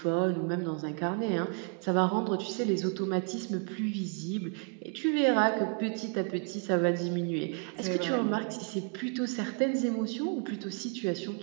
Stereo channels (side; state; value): left; quieter; 38.4 dB